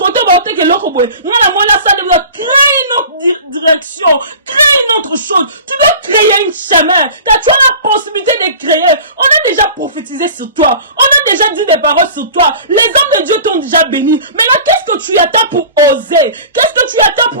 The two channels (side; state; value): both; inverted; correlation -0.40